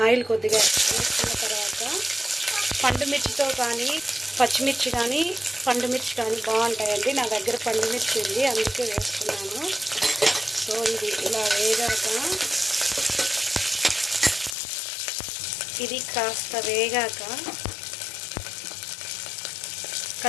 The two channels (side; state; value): right; drops out; at 14.6 s